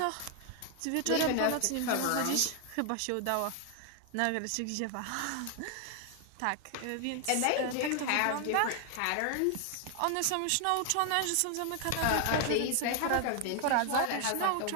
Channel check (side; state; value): both; different; correlation 0.00